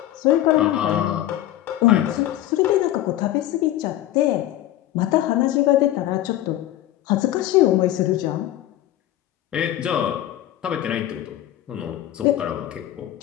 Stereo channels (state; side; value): quieter; right; 13.6 dB